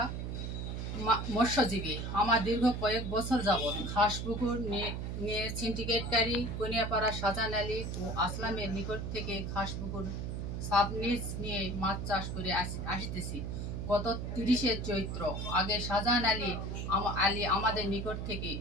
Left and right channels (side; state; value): right; noise; hum, 4 dB below the sound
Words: মৎস্যজীবী। আমার দীর্ঘ কয়েক বছর যাবৎ খাসপুকুর নিয়ে সিন্ডিকেটকারী কনিয়াপাড়া শাহজাহান আলী ও আসলামের নিকট থেকে খাসপুকুর সাবলিজ নিয়ে মাছ চাষ করে আসতেছি। গত 30শে চৈত্র আগে শাহজাহান আলী আমাদের নিকট থেকে